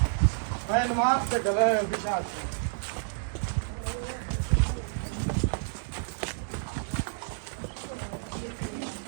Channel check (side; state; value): left; silent; digital silence